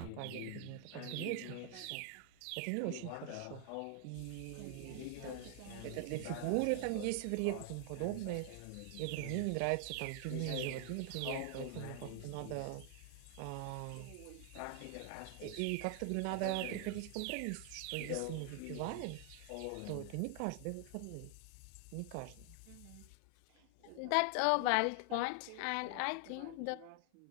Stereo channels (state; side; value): different; both; correlation 0.00